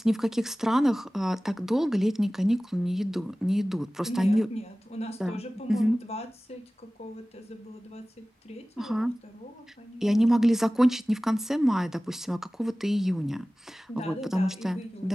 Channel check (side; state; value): both; normal; correlation 0.98